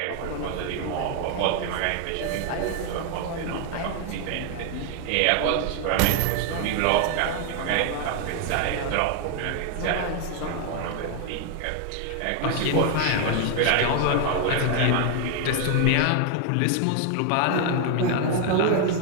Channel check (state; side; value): different; both; correlation 0.00